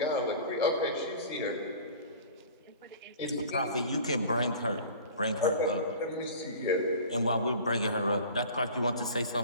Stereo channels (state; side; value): inverted; both; correlation -0.42